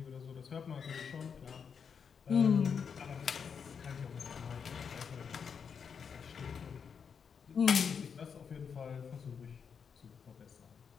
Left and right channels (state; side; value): quieter; right; 6.5 dB